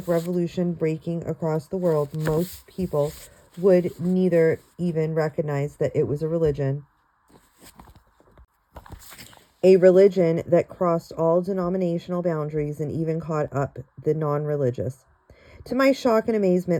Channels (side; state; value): both; identical; correlation 1.00